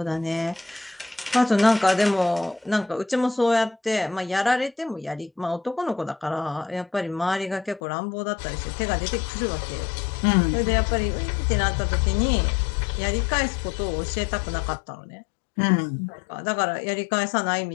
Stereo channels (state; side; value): drops out; right; at 7.8 s